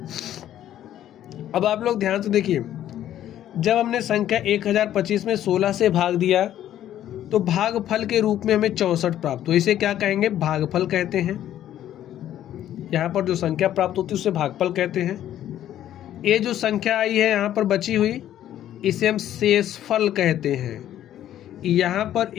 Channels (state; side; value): quieter; right; 11.8 dB